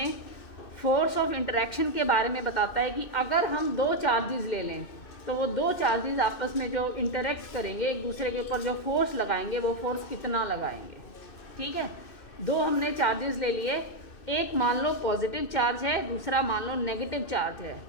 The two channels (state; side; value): late; right; 2.6 ms